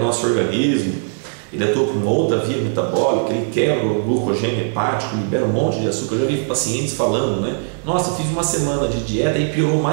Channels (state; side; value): silent; left; digital silence